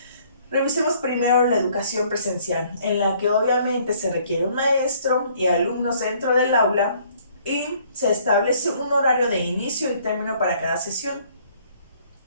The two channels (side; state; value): both; inverted; correlation -0.61